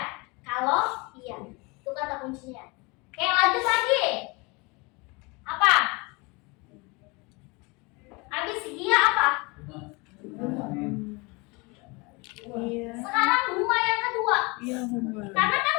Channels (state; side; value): quieter; right; 27.3 dB